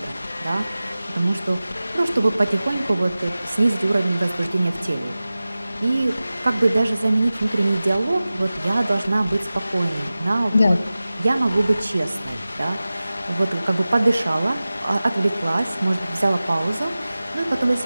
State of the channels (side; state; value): both; inverted; correlation -0.97